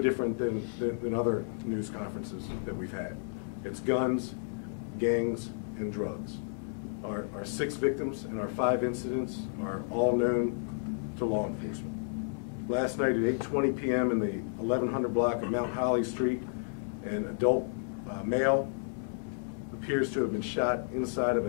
than other news conferences that we've had. It's guns, gangs, and drugs. Our 6 victims and our 5 incidents are all known to law enforcement. Last night at 8:20 p.m. in the 1100 block of Mount Holly Street, an adult male appears to have been shot inside of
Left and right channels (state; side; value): silent; right; digital silence